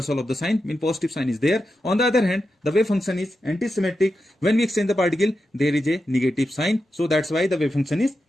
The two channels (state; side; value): normal; both; correlation 0.89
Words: of the sign, mean positive sign is there. On the other hand, the wave function is anti-symmetric. When we exchange the particle, there is a negative sign. So that's why the wave function is